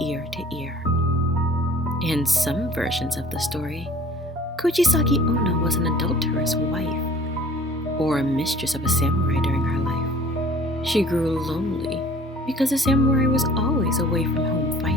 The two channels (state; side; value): normal; both; correlation 0.50